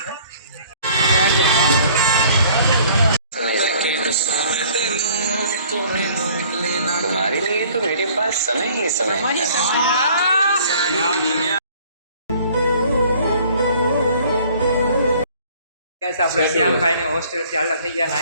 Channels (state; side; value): inverted; both; correlation -0.54